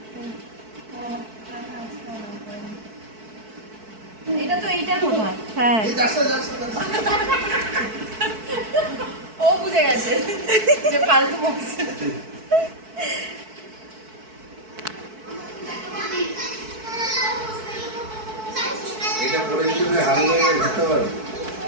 এটা তো এইটা কোথায়? হ্যাঁ, ও বুঝে গেছে যে ফালতু বকছে। এটা পরে যদি তুমি হারিয়ে ঘুরতে পারো।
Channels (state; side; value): late; left; 4.6 ms